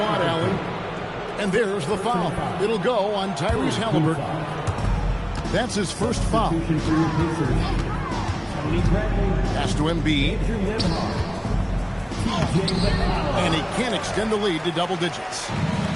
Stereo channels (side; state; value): both; identical; correlation 1.00